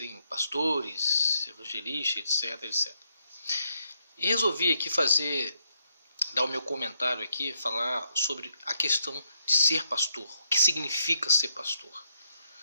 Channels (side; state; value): both; inverted; correlation -0.76